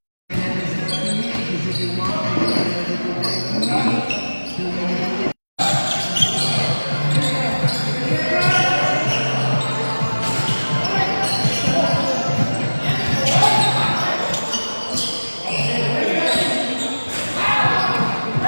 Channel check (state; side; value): inverted; both; correlation -1.00